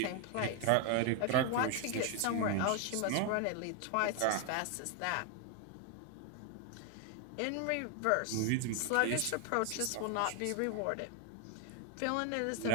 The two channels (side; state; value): both; different; correlation 0.01